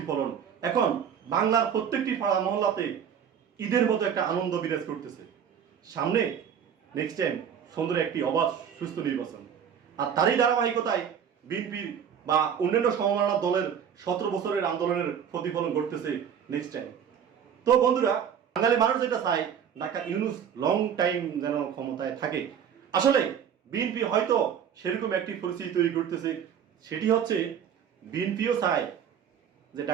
এখন বাংলার প্রত্যেকটি পাড়া মহল্লাতে ঈদের মতো একটা আনন্দ বিরাজ করতেছে। সামনে নেক্সট টাইম সুন্দর একটি অবাধ সুস্থ নির্বাচন, আর তারই ধারাবাহিকতায় বিএনপির বা অন্যান্য সমমনা দলের 17 বছরের আন্দোলনের প্রতিফলন ঘটতেছে নেক্সট টাইম। তো বন্ধুরা, বাঙালি মানুষ যেটা চায়, ডাক্তার ইউনূস লং টাইম যেন ক্ষমতায় থাকে। আসলে বিএনপি হয়তো সেরকম একটি পরিস্থিতি তৈরি করতেছে, সেটি হচ্ছে বিএনপিও চায় যে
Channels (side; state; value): left; quieter; 8.2 dB